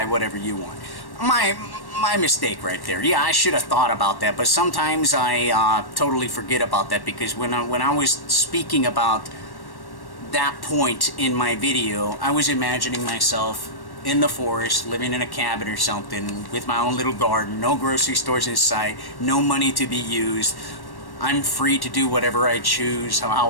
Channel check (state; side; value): late; right; 1.1 ms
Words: whatever you want. My mistake right there. Yeah, I should have thought about that, but sometimes I totally forget about that because when I was speaking about that point in my video, I was imagining myself in the forest, living in a cabin or something, with my own little garden, no grocery stores in sight, no money to be used. I'm free to do whatever I choose,